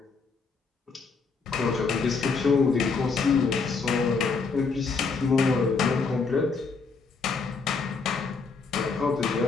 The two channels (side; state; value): right; quieter; 4.8 dB